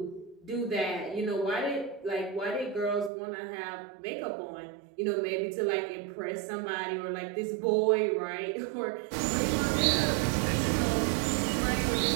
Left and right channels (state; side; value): drops out; left; at 3.1 s